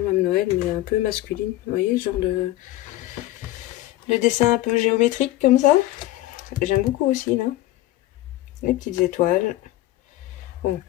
Noël, mais un peu masculine. Vous voyez, ce genre de dessin un peu géométrique comme ça. J'aime beaucoup aussi, là. Les petites étoiles. Bon,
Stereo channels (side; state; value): right; quieter; 16.1 dB